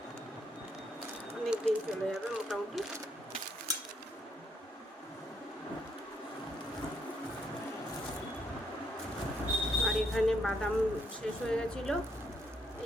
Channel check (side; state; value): both; normal; correlation 0.74